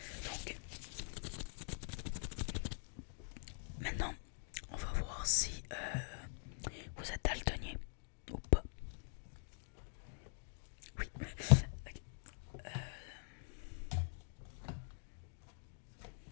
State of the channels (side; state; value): right; silent; digital silence